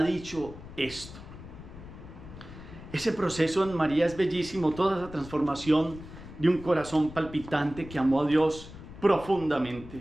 dicho esto. Ese proceso en María es bellísimo, toda esa transformación de un corazón palpitante que amó a Dios profundamente,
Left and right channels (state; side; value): noise; left; rumble, 15 dB below the sound